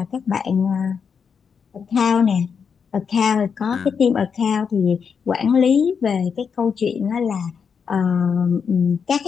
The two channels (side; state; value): right; quieter; 6.4 dB